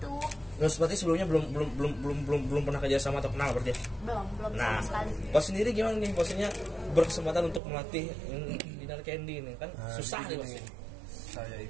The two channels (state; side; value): drops out; left; at 7.6 s